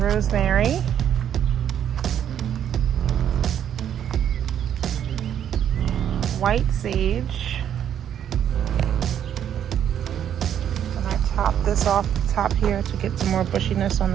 White sage. And I top this off the top here to get some more bushiness on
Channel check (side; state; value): left; quieter; 9.6 dB